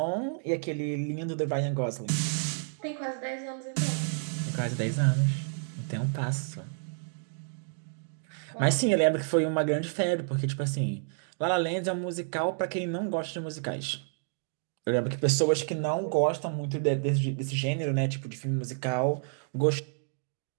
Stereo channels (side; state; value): left; silent; digital silence